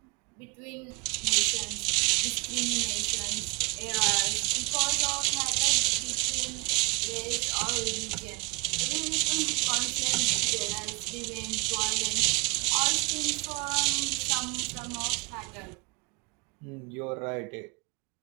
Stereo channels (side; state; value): left; quieter; 28.4 dB